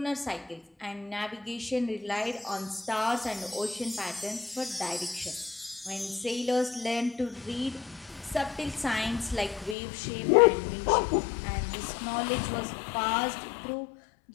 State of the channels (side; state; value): right; drops out; at 9.8 s